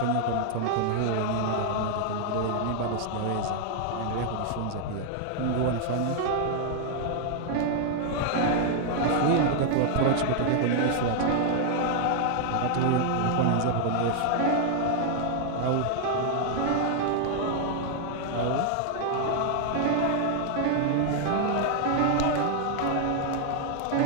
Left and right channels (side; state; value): both; different; correlation 0.00